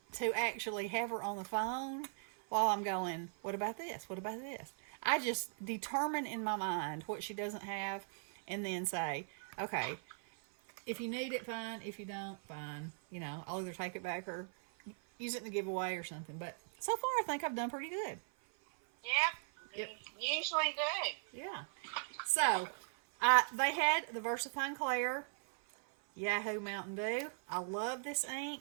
actually have her on the phone while I'm going, what about this? What about this? I just determine in my mind what she doesn't have and then say, okay, if you need it, fine. If you don't, fine. I'll either take it back or use it in the giveaway or something. But so far, I think I've done pretty good. Yep. You usually do. Yeah. So, they had the VersaFine Clair Yahoo Mountain Dew. I love this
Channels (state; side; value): silent; left; 52 dB below the other